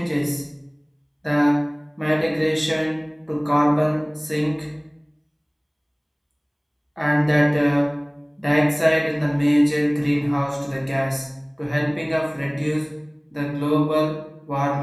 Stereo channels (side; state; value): both; identical; correlation 1.00